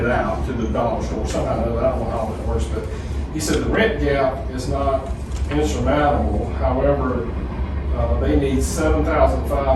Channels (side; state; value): both; identical; correlation 1.00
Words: out to the dollar store somehow, I don't know how that works, but he said the rent gap is not insurmountable, however, they need $7,500